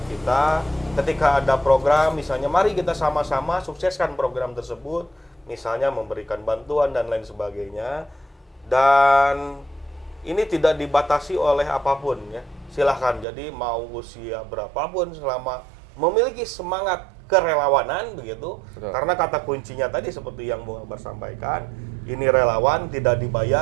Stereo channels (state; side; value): drops out; left; at 13.2 s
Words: kita. Ketika ada program, misalnya mari kita sama-sama sukseskan program tersebut, misalnya memberikan bantuan dan lain sebagainya. Dan ini tidak dibatasi oleh apapun ya, silahkan. Jadi mau usia berapapun selama memiliki semangat kerelawanan begitu. Betul. Karena kata kuncinya tadi seperti yang Bung Akbar sampaikan, ini relawan, tidak